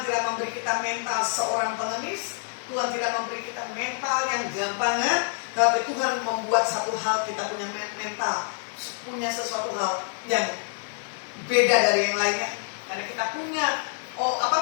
tidak memberi kita mental seorang pengemis, Tuhan tidak memberi kita mental yang gampangan, tapi Tuhan membuat satu hal, kita punya mental, punya sesuatu hal yang beda dari yang lainnya. Karena kita punya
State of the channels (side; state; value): right; silent; 60 dB below the other